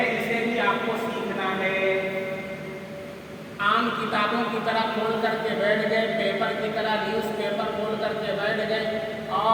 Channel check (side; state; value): both; identical; correlation 1.00